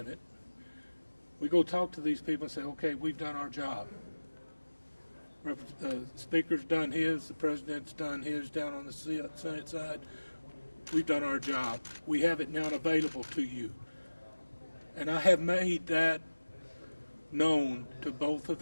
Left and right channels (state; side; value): inverted; both; correlation -1.00